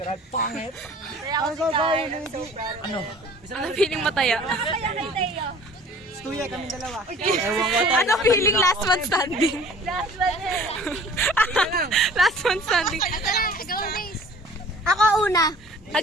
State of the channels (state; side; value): normal; both; correlation 0.48